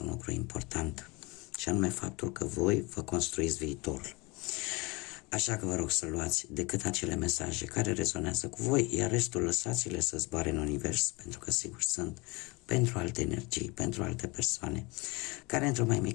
un lucru important, și anume faptul că voi vă construiți viitorul. Așa că vă rog să luați decât acele mesaje care rezonează cu voi, iar restul lăsați-le să zboare în univers, pentru că sigur sunt pentru alte energii, pentru alte persoane, care într-o mai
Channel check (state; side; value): quieter; right; 26.1 dB